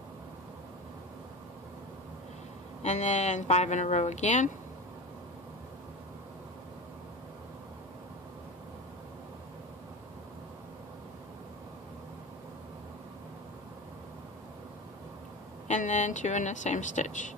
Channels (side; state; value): both; normal; correlation 0.27